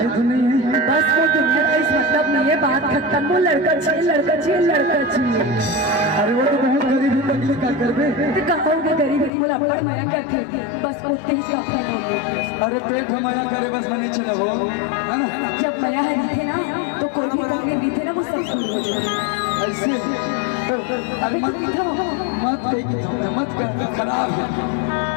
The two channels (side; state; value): right; drops out; at 9.3 s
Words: तो नहीं है। बस वो दुनिया का इस मतलब नहीं है, बात खत्म। वो लड़का चाहिए लड़का चाहिए लड़का चाहिए। अरे वो तो बहुत गरीब है, तकलीफ क्या कर बे? तो कहोगे गरीब है, मुझे अपना माया करते बस उठते ही कपड़ा। अरे पेट माया करे बस मने चले वो है ना। जब माया है दिखे ना तो कोई भी कपड़े भी थे ना वो सब भूल हो जाए ऐसे तो अरे मत कह खराब है।